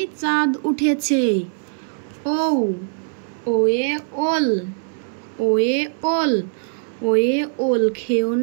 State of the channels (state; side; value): silent; left; 65 dB below the other